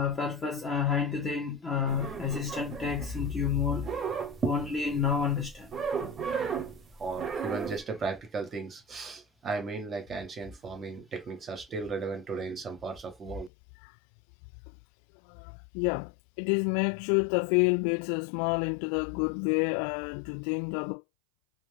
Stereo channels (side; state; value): right; drops out; at 13.5 s